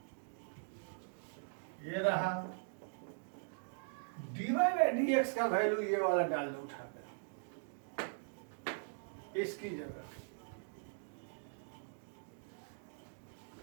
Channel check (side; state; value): left; silent; digital silence